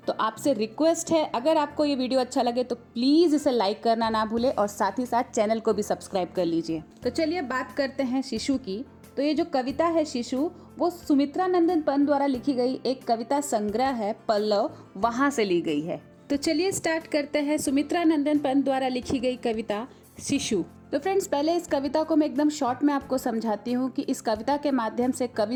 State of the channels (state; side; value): identical; both; correlation 1.00